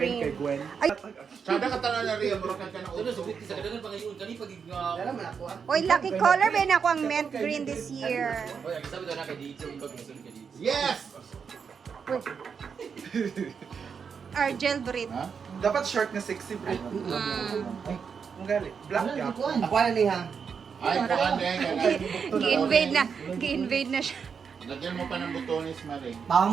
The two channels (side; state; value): left; quieter; 6.3 dB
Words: kay Gwen. Ay, Sada ka tanan na Rhea, mura ka na Ito na, subit sa kadagan pangayon, kani pag oy, lucky color ba na ako ang mint green this year. Oy, ang sabi daw na kay dito, ikaw gusto ka dito. Yes! Argel breed. Ha? Dapat short na sexy bro. Ang gali. Black ka. Ako na niya. Ay, kuan din. Gi-invade na siya. Lagyan mo pa ng butones, Marie.